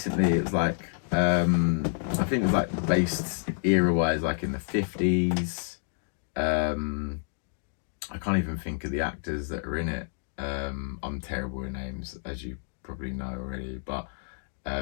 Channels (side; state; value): right; silent; digital silence